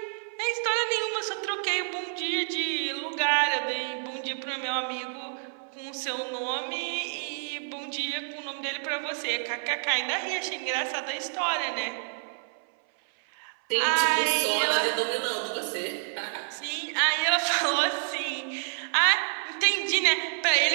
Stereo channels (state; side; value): silent; left; 59 dB below the other